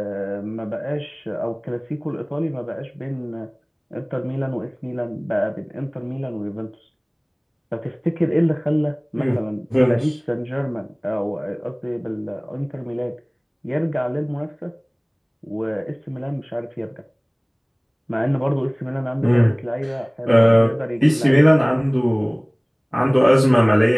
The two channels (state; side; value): identical; both; correlation 1.00